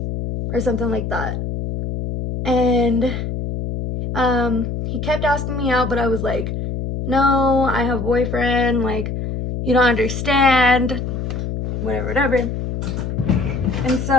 or something like that. And he kept asking me out, but I was like, no, I have a boyfriend, like, you don't understand, whatever. And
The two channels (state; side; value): noise; left; hum, 4 dB below the sound